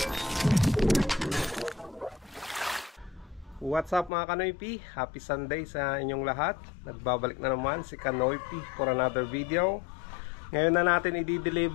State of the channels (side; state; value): right; drops out; at 4.1 s